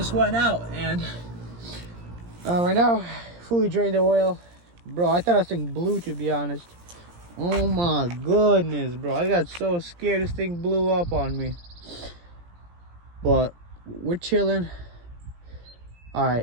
went out, and right now, fully drained the oil. Bro, I thought this thing blew, to be honest. Oh my goodness, bro. I got so scared this thing blew up on me. But we're chilling.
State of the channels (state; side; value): late; left; 17 ms